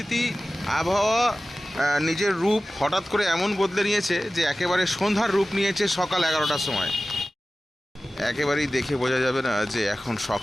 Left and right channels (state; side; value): normal; both; correlation 0.96